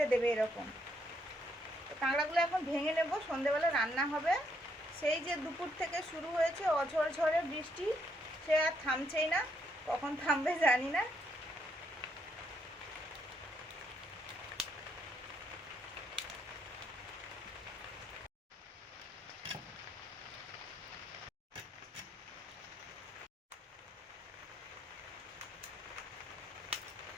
দেবে এরকম। তো কাঁকড়াগুলো এখন ভেঙে নেব, সন্ধেবেলা রান্না হবে। সেই যে দুপুর থেকে শুরু হয়েছে অঝড়ঝড়ে বৃষ্টি, সে আর থামছেই না, কখন থামবে জানি না।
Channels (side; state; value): both; normal; correlation 0.74